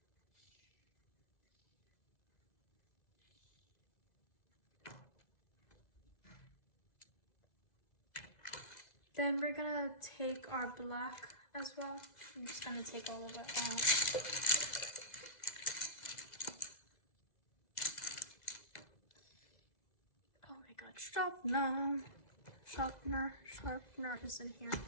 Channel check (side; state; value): right; late; 2.0 ms